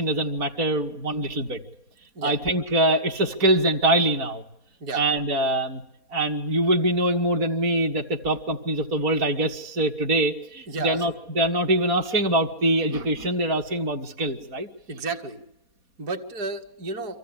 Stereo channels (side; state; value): left; late; 4.2 ms